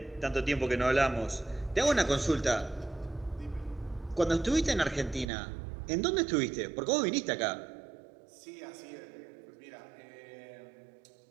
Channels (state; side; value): drops out; left; at 5.2 s